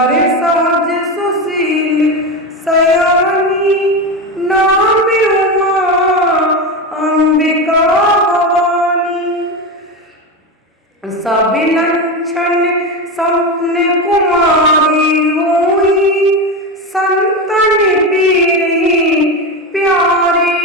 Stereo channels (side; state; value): both; normal; correlation 0.18